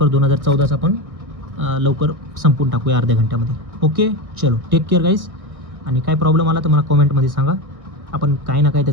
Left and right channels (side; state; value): left; late; 1.6 ms